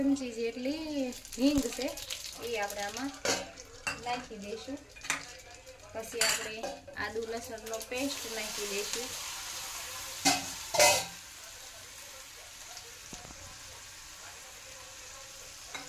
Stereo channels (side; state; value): both; identical; correlation 1.00